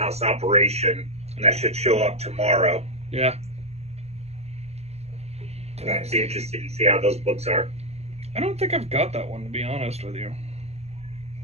Operation, and that should show up tomorrow. Yeah. Nice. Be interested to see how those books are. I don't think I've got that one, to be honest with you.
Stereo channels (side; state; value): left; late; 0.31 ms